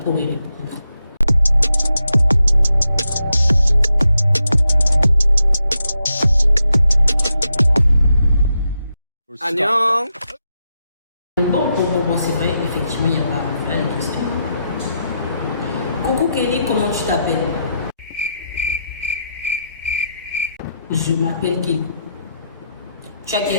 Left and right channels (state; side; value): inverted; both; correlation -0.83